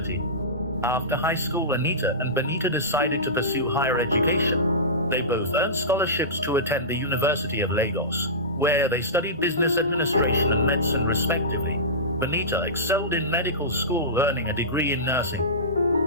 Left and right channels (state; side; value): normal; both; correlation -0.19